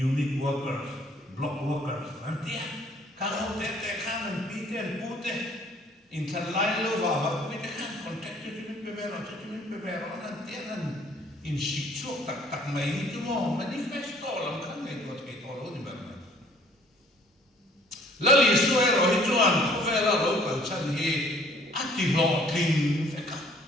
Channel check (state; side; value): normal; both; correlation 0.58